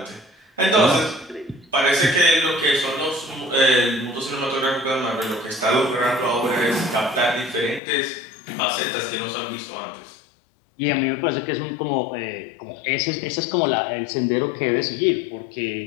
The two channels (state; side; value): drops out; right; at 7.8 s